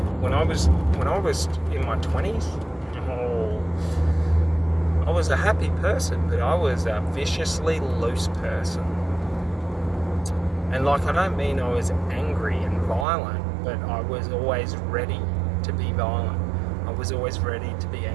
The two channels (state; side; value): drops out; left; at 13.1 s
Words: when I was in my 20s, I was a happy person, but I was a viciously loose person. And like, I don't mean I was angry and violent, but I was always ready to be violent. I was always ready to be